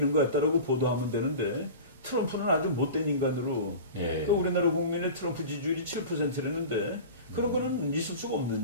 것 같다라고 보도하면 되는데 트럼프는 아주 못된 인간으로 그러니까 우리나라 국민의 트럼프 지지율이 7%라는데 그런 거는 있을 수가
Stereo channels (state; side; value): inverted; both; correlation -0.34